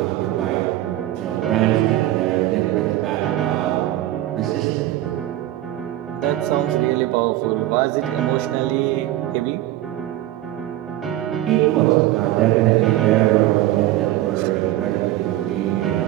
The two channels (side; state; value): left; quieter; 14.7 dB